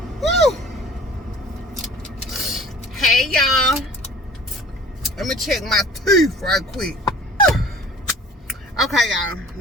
Hey y'all, let me check my teeth right quick. Okay y'all,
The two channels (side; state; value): both; normal; correlation 0.47